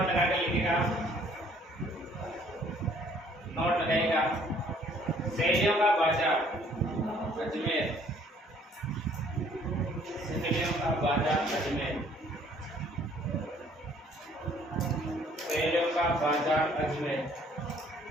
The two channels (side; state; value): both; normal; correlation 0.60